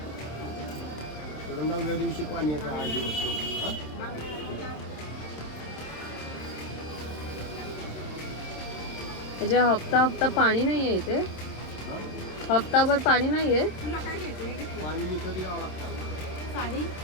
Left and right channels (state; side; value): late; right; 27 ms